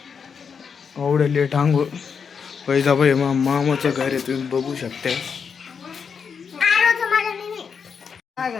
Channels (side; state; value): right; quieter; 6.3 dB